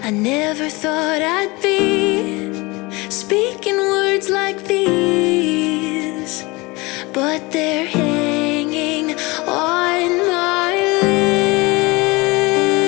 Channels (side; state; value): right; quieter; 24.1 dB